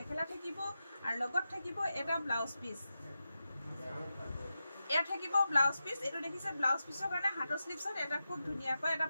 থাকিব আৰু লগত থাকিব এটা ব্লাউজ পিস এয়া থাকিব ব্লাউজ পিস এটো দেখিছে ব্লাউজ পিসৰ কাৰণে হাতৰ স্লিপছত এটা খুব ধুনিয়াকৈ এটা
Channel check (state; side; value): inverted; both; correlation -0.91